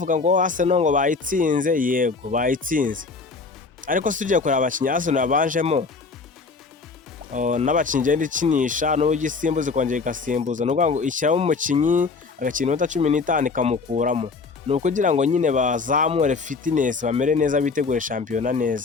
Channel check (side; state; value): right; quieter; 4.5 dB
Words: ngo Arsenal ngo bayitsinze. Yego bayitsinze, ariko si ugiye kureba abakinnyi Arsenal yabanjemo n'abakinnyi igenda ikinisha n'uburyo isimbuza ikongera igasimbuza, ni ukuvuga ngo ishyiramo umukinnyi agakina iminota 15 ikamukuramo, ni ukugira ngo nyine bazamure fitness, bamere neza, bitegure shampiyona